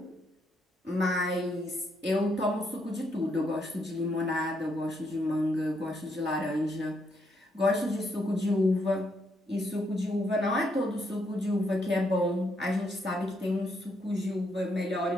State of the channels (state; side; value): normal; both; correlation 0.76